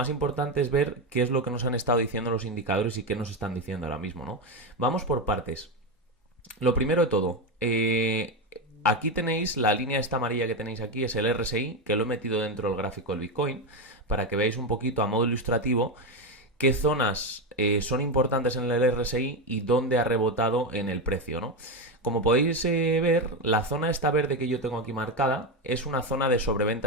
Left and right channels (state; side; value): normal; both; correlation 0.11